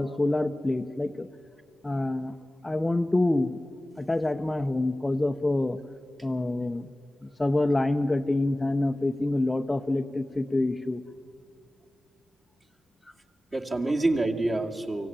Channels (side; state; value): both; normal; correlation 0.97